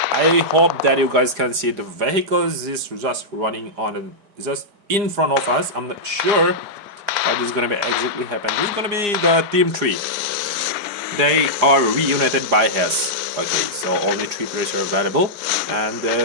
I hope that you guys can see the vehicles is just running on just in front of us. I'm not sure what is gonna be exactly happen. This is gonna be the Team 3. They are reunited by Hess. Okay, so only 3 players are available, and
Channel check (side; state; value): left; late; 4.9 ms